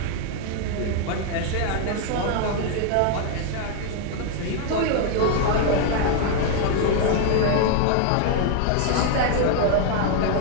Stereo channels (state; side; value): different; both; correlation 0.00